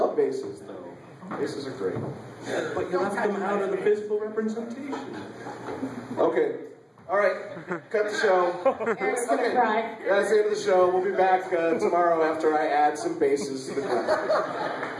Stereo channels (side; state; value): both; identical; correlation 1.00